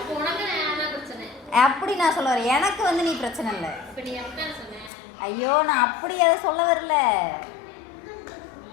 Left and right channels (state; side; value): drops out; right; at 4.9 s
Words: உனக்கு நான் தான் பிரச்சனை. அப்படி நான் சொல்ல வரேன். எனக்கு வந்து நீ பிரச்சனை இல்லை. இப்ப நீ எப்படி சொன்ன? ஐயோ நான் அப்படி அதை சொல்ல வரல.